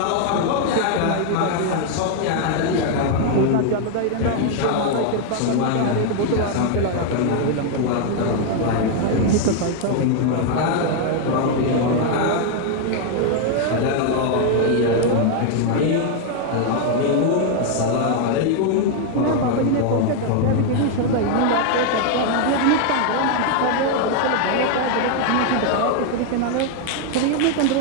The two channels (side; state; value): both; different; correlation 0.00